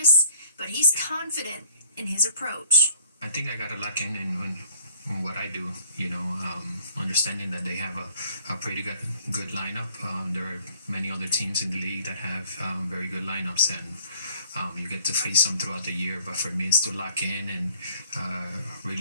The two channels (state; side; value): inverted; both; correlation -0.56